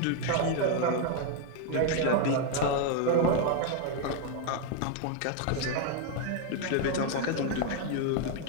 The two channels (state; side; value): different; both; correlation 0.01